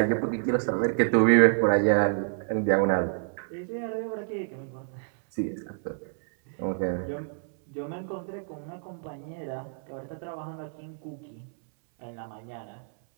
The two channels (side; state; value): left; silent; 59 dB below the other